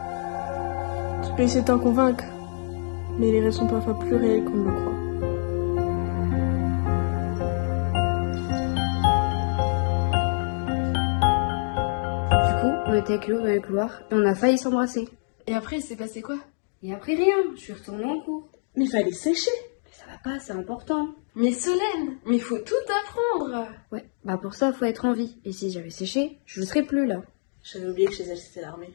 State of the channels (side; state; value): right; silent; digital silence